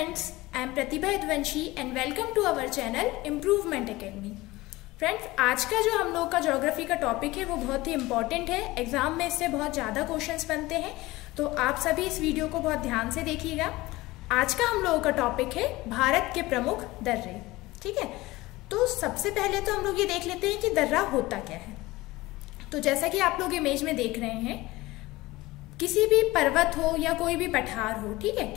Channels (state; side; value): quieter; right; 19.6 dB